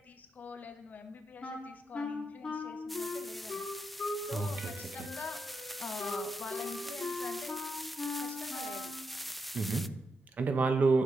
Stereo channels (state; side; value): normal; both; correlation 0.85